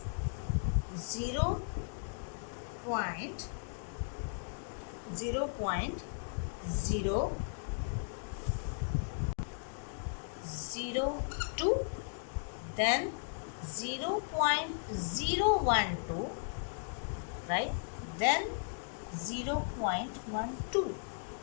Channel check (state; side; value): silent; right; digital silence